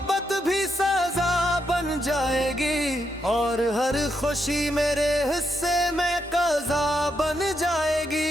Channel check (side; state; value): both; normal; correlation 0.81